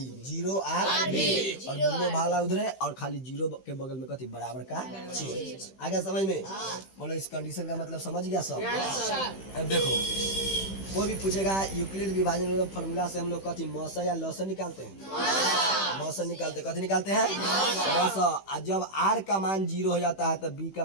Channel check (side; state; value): right; late; 15 ms